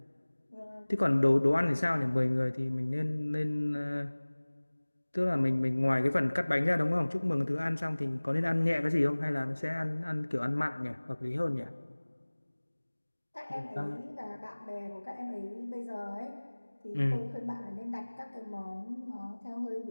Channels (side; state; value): both; inverted; correlation -1.00